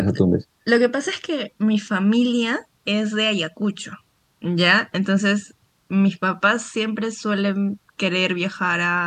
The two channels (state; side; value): identical; both; correlation 1.00